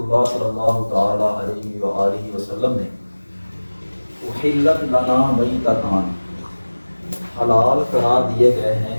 صلی اللہ تعالیٰ علیہ وآلہ وسلم نے احلت لنا میتتان، حلال قرار دیے گئے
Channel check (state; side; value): inverted; both; correlation -1.00